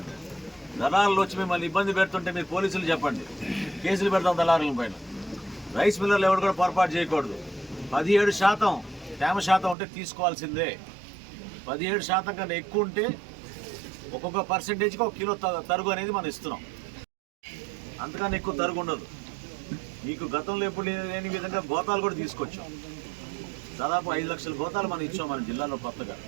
దళారులు వచ్చి మిమ్మల్ని ఇబ్బంది పెడుతుంటే మీరు పోలీసులు చెప్పండి, కేసులు పెడతాం దళారుల పైన. రైస్ మిల్లర్లు ఎవరు కూడా పొరపాటు చేయకూడదు. 17% తేమ శాతం ఉంటే తీసుకోవాల్సిందే. 17% కన్నా ఎక్కువ ఉంటే ఒక్కొక్క పర్సెంటేజ్కి 1 కిలో తరుగు అనేది మనం ఇస్తున్నాం. అంతకన్నా ఎక్కువ తరుగు ఉండదు. మీకు గతంలో ఎప్పుడు లేని విధంగా గోతాలు కూడా తీసుకొచ్చాం. దాదాపు 5 లక్షల గోతాలు మనం ఇచ్చాం మన జిల్లాలో కొత్తగా.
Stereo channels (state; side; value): drops out; left; at 9.8 s